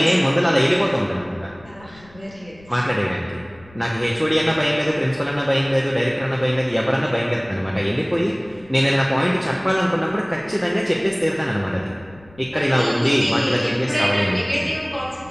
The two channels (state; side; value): noise; left; rumble, 25 dB below the sound